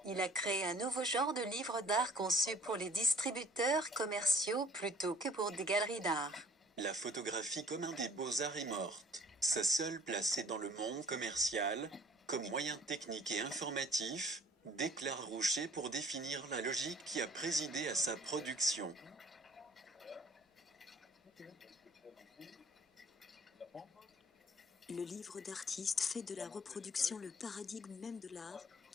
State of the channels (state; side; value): normal; both; correlation 0.54